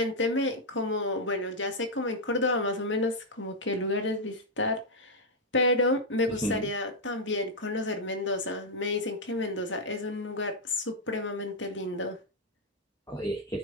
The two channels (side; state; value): both; normal; correlation -0.03